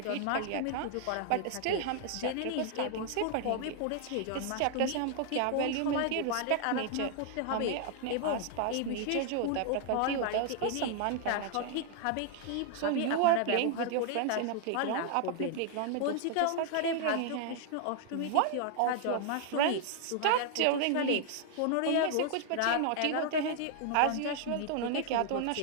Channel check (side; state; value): both; different; correlation 0.00